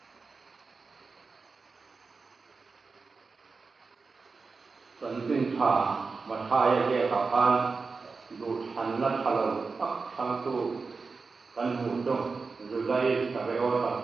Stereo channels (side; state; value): left; quieter; 4.4 dB